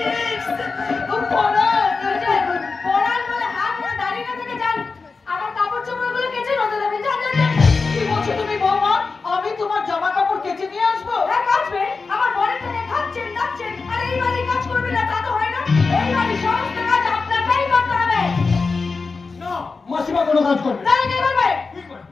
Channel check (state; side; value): quieter; right; 4.4 dB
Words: কোনো কাজ করবে তাহলে কে করবে? তুই করবি।